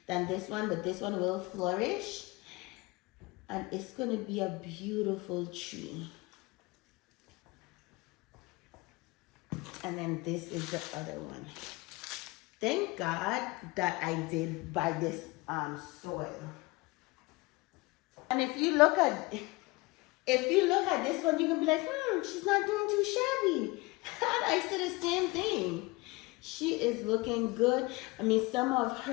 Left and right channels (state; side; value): quieter; right; 24.0 dB